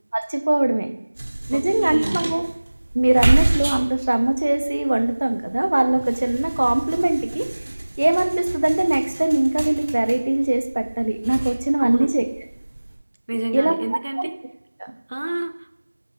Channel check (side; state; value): both; inverted; correlation -1.00